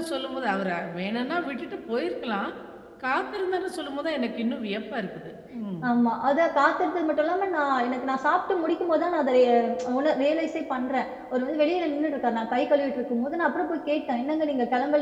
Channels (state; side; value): identical; both; correlation 1.00